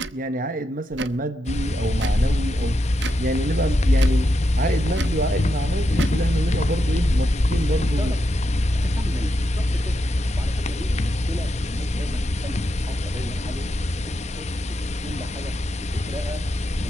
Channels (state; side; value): normal; both; correlation 0.85